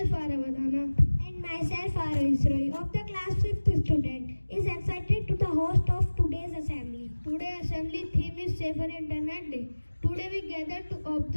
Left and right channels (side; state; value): both; inverted; correlation -1.00